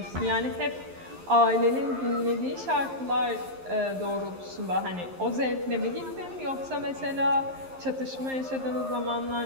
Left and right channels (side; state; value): left; late; 11 ms